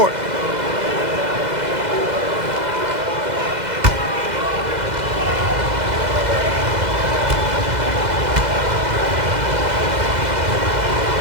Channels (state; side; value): late; left; 2.0 ms